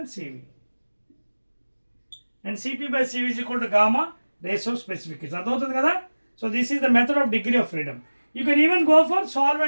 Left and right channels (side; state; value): both; inverted; correlation -1.00